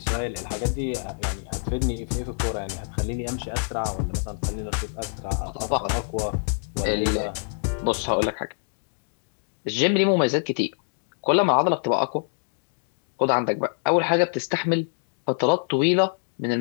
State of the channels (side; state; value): right; silent; digital silence